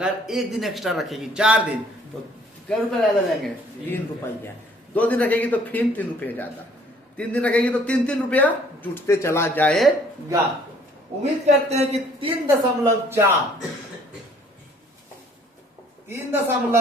1 दिन एक्स्ट्रा रखेगी 4 दिन, तो कितने रुपए ज्यादा लेंगे 3 रुपया। 2 दिन रखेगी तो फिर 3 रुपये ज्यादा, 3 दिन रखेगी तो 3 रुपया जुटते चला जाएगा। उम्मीद करते हैं कि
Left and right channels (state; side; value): normal; both; correlation 0.59